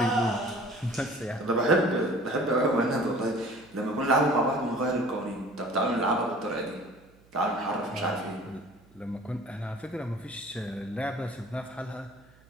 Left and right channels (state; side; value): noise; right; hum, 28 dB below the sound